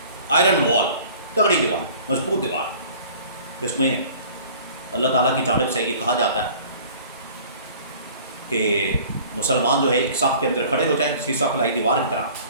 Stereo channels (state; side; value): inverted; both; correlation -0.48